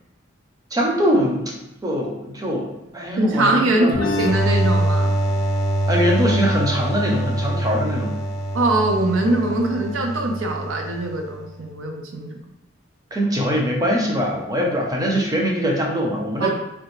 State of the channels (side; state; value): both; normal; correlation 0.58